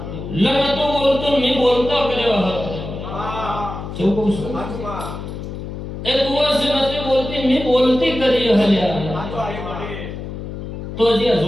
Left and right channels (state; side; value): noise; left; hum, 8 dB below the sound